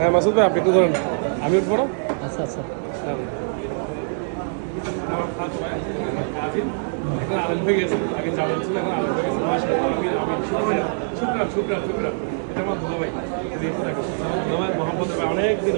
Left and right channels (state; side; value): silent; left; 63 dB below the other